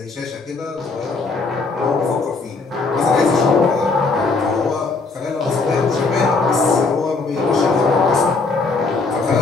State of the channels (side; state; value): right; quieter; 4.0 dB